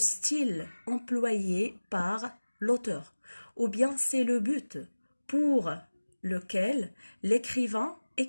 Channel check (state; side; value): inverted; both; correlation -1.00